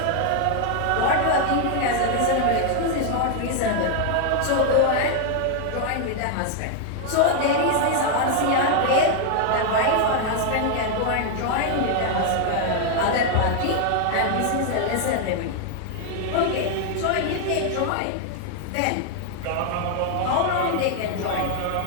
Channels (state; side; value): different; both; correlation 0.00